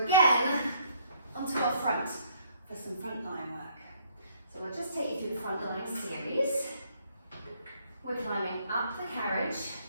onto our front for some front line work. So we'll just take you through the front line series. We're climbing up the carriage,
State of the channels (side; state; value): both; inverted; correlation -0.65